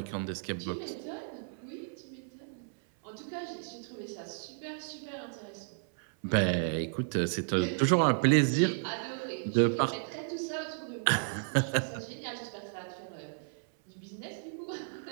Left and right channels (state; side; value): silent; left; 56 dB below the other